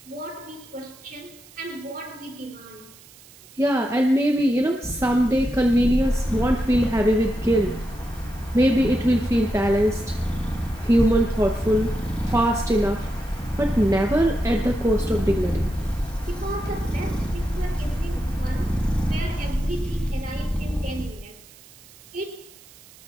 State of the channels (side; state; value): right; noise; hiss, 23 dB below the sound